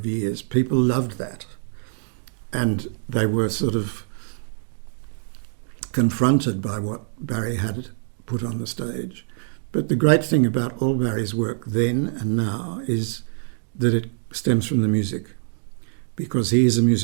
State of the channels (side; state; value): left; silent; digital silence